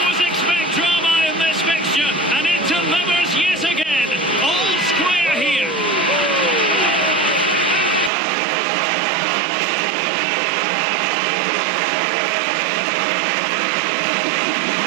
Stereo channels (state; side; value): drops out; left; at 8.1 s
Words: expect drama in this fixture, and it delivers yet again. All square here.